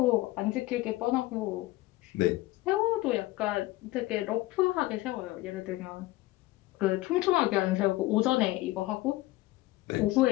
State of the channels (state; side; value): quieter; right; 18.4 dB